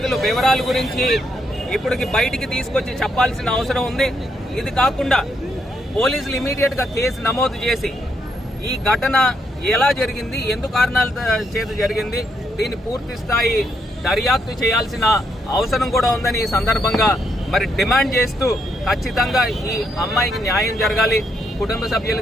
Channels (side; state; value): both; normal; correlation 0.76